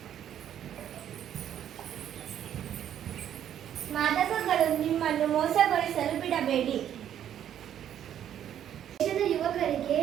ಮಾದಕಗಳು ನಿಮ್ಮನ್ನು ಮೋಸಗೊಳಿಸಲು ಬಿಡಬೇಡಿ. ದೇಶದ ಯುವಕರಿಗೆ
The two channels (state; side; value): quieter; left; 10.2 dB